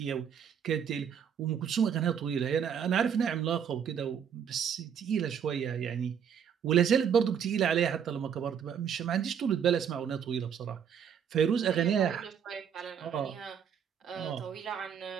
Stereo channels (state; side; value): quieter; left; 7.9 dB